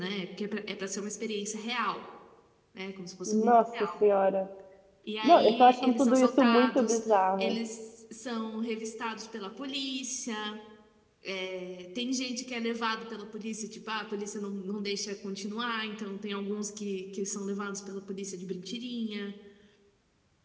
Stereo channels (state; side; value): identical; both; correlation 1.00